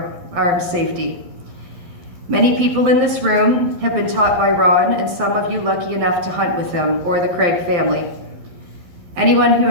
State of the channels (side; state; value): left; late; 12 ms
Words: safety. Many people in this room have been taught by Ron, and some of you lucky enough to hunt with him or the Craig family. Anyone who